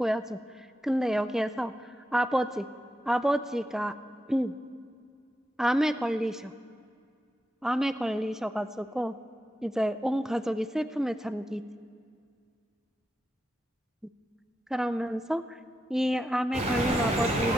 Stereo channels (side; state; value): both; normal; correlation 0.87